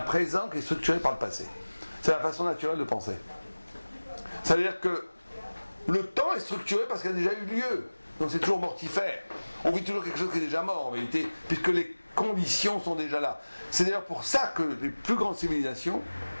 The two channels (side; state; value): both; inverted; correlation -1.00